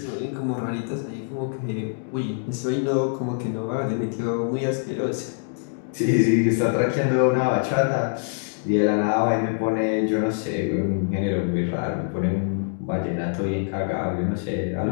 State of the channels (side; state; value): right; silent; digital silence